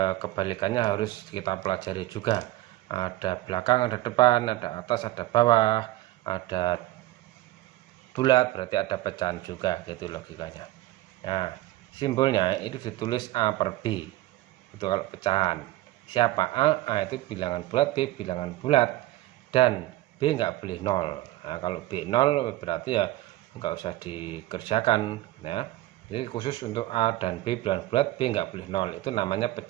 kebalikannya harus kita pelajari juga. Ada belakang, ada depan, ada atas, ada bawah, ada bulat berarti ada pecahan juga, gitu logikanya. Nah, simbolnya itu ditulis A per B. Itu kalau pecahan. Siapa A itu bilangan bulat, B bilangan bulat, dan B nggak boleh 0. Nah, kalau B 0 berarti ya nggak usah dikerjakan ya. Jadi khusus untuk A dan B bilangan bulat, B nggak boleh 0. Itu namanya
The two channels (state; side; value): quieter; left; 16.6 dB